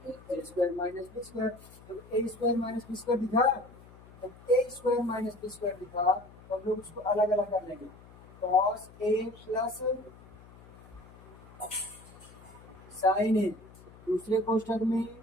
a square minus b square. जब a square minus b square दिखा जब a square minus b square दिखा तो हम लोग उसको अलग अलग कर लेंगे cos a प्लस साइन ए, दूसरे कोष्ठक में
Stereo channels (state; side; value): noise; left; hum, 22 dB below the sound